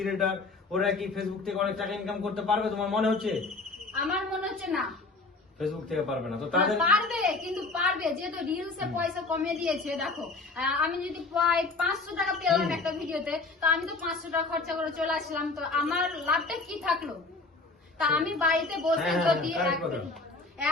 ওরা কি ফেসবুক থেকে অনেক টাকা ইনকাম করতে পারবে তোমার মনে হচ্ছে? আমার মনে হচ্ছে না, ফেসবুক থেকে পারবে না। তো তাদের পারবে, কিন্তু পারবে যেহেতু রিলসে পয়সা কমিয়ে দিয়েছে। দেখো আমি যদি প্রায় 500 টাকা পেলাম একটা ভিডিওতে, তো আমি তো 500 টাকা খরচা করে চলে আসলাম, তো আমার লাভটা কি থাকলো? তা আমি বাড়িতে বসে যদি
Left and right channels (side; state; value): right; quieter; 3.6 dB